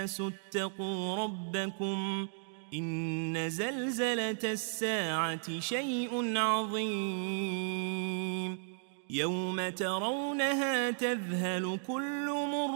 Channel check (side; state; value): left; silent; digital silence